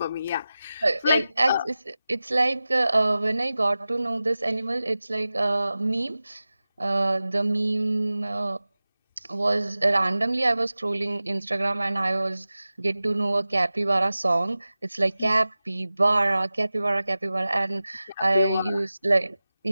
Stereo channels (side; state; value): both; inverted; correlation -0.96